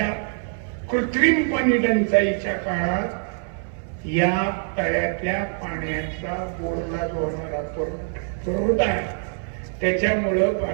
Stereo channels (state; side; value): silent; left; 61 dB below the other